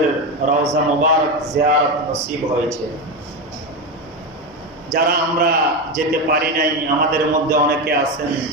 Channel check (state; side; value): normal; both; correlation 0.15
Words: রওজা মুবারক জিয়ারত নসিব হয়েছে। যারা আমরা যেতে পারি নাই, আমাদের মধ্যে অনেকে আছেন